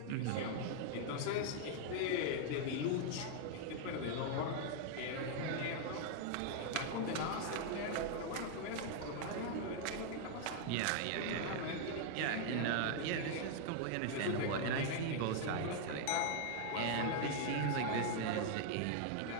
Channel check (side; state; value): both; different; correlation 0.00